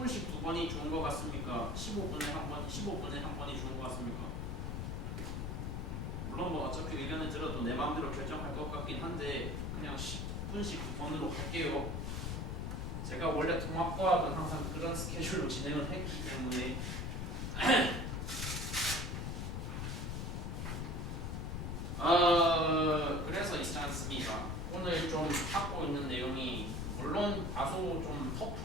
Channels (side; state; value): left; noise; rumble, 2 dB below the sound